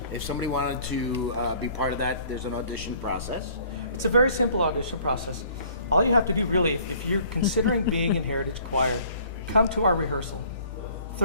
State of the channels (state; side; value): inverted; both; correlation -0.56